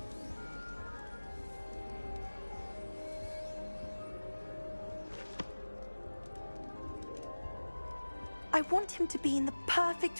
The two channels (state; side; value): inverted; both; correlation -1.00